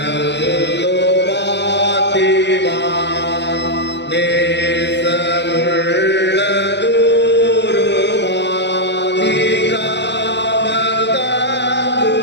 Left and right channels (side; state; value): right; late; 0.51 ms